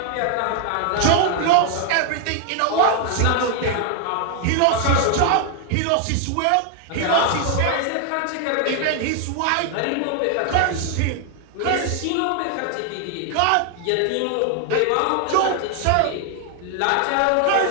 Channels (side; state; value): both; different; correlation 0.00